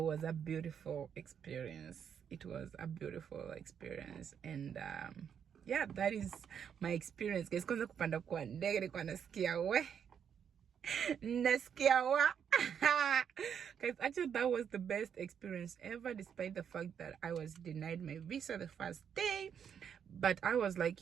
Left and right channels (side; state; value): left; quieter; 8.0 dB